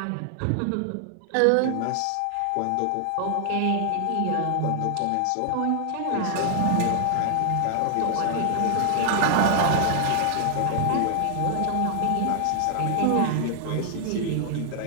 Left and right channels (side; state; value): both; different; correlation 0.00